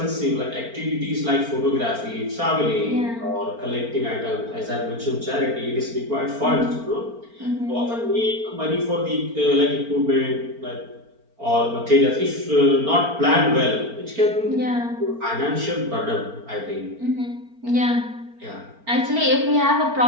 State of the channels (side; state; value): left; late; 4.4 ms